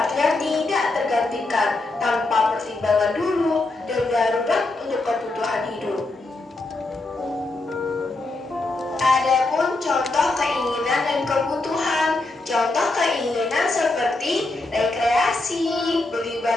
tidak tergantikan, tanpa pertimbangan dulu dan darurat untuk kebutuhan hidup. Adapun contoh keinginan dan kebutuhan. Contoh keinginan seperti rekreasi, beli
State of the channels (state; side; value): quieter; right; 3.1 dB